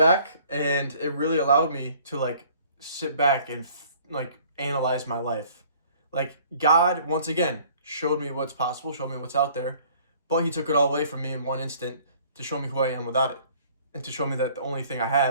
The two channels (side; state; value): both; inverted; correlation -0.55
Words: and it really allowed me to like sit back and like analyze my life. Like, God, once again, showed me what's possible, showed me what's out there. But he took it all away from me in one instant to show me who I am without it. And to show me that the only thing I